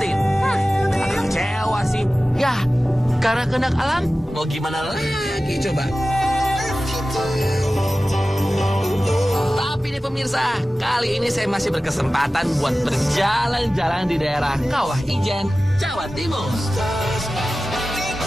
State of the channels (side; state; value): both; normal; correlation 0.96